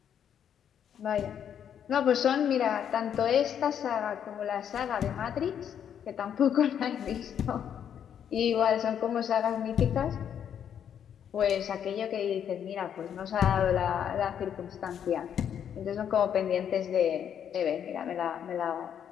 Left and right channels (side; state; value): right; quieter; 8.8 dB